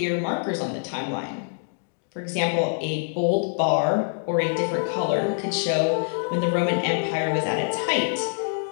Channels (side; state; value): right; silent; digital silence